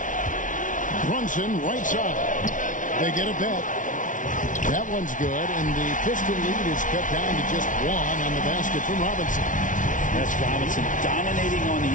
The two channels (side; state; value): right; late; 0.38 ms